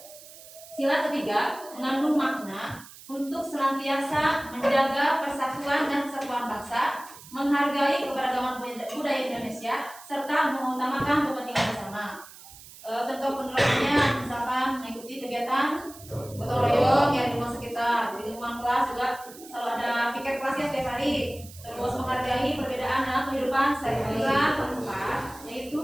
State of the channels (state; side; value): noise; right; hiss, 18 dB below the sound